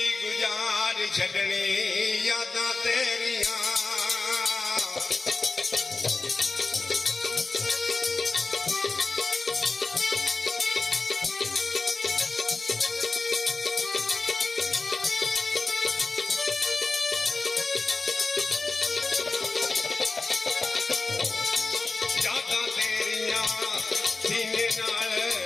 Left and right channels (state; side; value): quieter; right; 3.7 dB